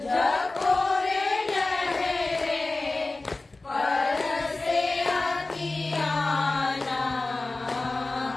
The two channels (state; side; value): quieter; right; 3.2 dB